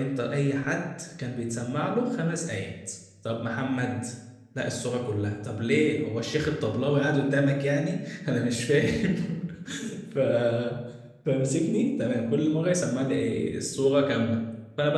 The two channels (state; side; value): identical; both; correlation 1.00